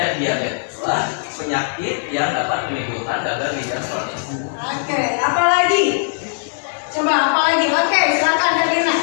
diabeteslah penyakit yang dapat menimbulkan gagal ginjal kronis. Oke, apa lagi? Coba apa lagi? Oke, silakan Davina.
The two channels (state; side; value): silent; right; 66 dB below the other